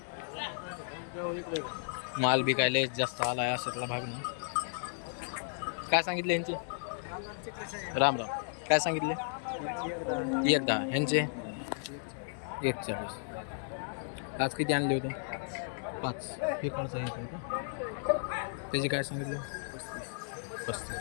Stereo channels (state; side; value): silent; right; digital silence